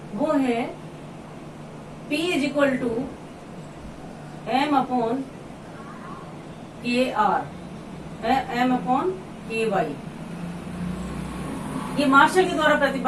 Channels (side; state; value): both; identical; correlation 1.00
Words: वो है P is equal to M upon KR, M upon KY। ये मार्शल के द्वारा